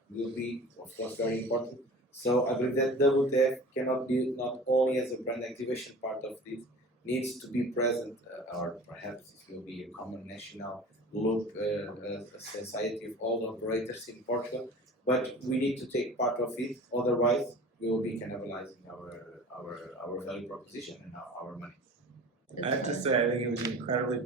will be, of course, very important. So I believe that WTF cannot be not only as a brand activation part of this, needs to be present, or perhaps it will be a common national loop, a society of all operators in Portugal, but we need to take part of it, otherwise we will be cannibalizing our value proposition and our money. I have to say, I think it was incredibly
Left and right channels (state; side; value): normal; both; correlation 0.40